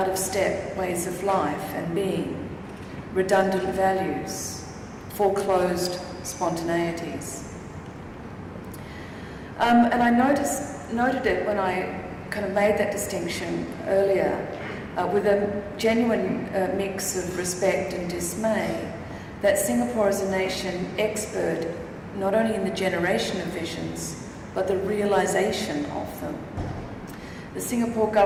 of step ways of life and being, redundant values, foreclosed spontaneities. And I noted it when I kind of made that distinction earlier, with a genuine mix of respect and dismay, that Singapore is a nation expert not only in the generation of visions, but the realization of them. The Singapore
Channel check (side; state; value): both; identical; correlation 1.00